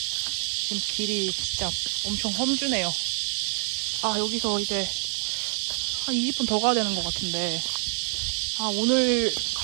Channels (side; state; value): left; silent; 60 dB below the other